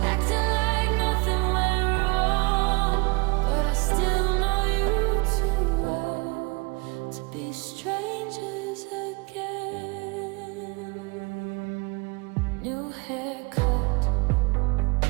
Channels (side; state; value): left; quieter; 27.2 dB